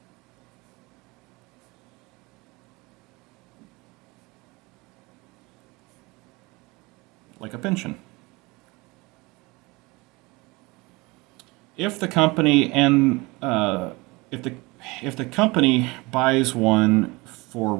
Like a pension. If the company if the company buys one for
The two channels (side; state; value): left; quieter; 24.2 dB